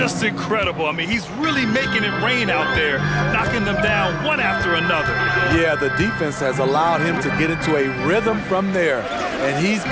incredible. I mean, he's really making it rain out there, knocking them down one after another. Yeah, the defense has allowed him to get into a rhythm from there, and he's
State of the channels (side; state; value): both; identical; correlation 1.00